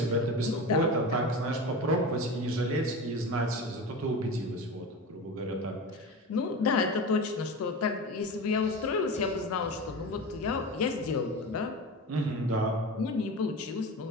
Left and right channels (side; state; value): both; normal; correlation 0.28